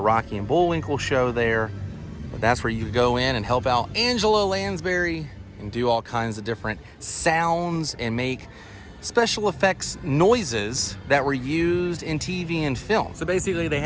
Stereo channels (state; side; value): identical; both; correlation 1.00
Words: and Bullwinkle show there. But that's where you could go in and help out Angela Lansbury and do all kinds of different sounds and make special effects noises that were used in TV and film. So basically they